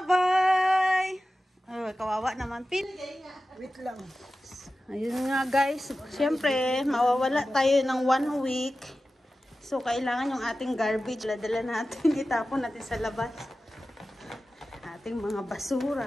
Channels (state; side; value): normal; both; correlation 0.94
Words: Oh, kawawa naman, Pin. Wait lang. Ayun nga guys, siyempre mawawala tayo ng 1 week. So kailangan yung ating garbage, dala natin, itapon natin sa labas. Ating mga